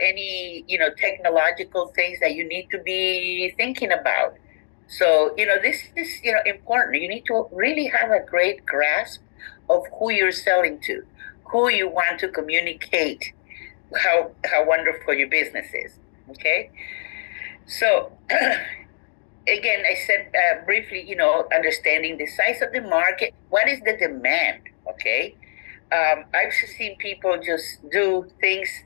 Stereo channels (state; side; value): silent; right; digital silence